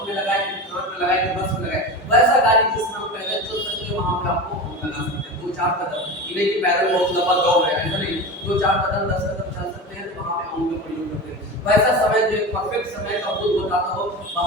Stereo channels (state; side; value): normal; both; correlation 0.27